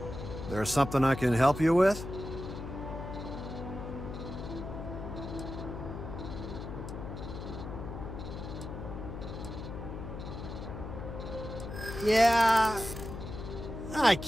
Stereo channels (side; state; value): left; noise; hum, 8 dB below the sound